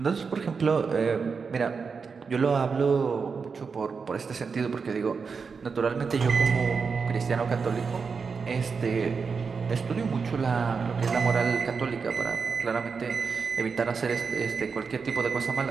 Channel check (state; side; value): quieter; left; 5.3 dB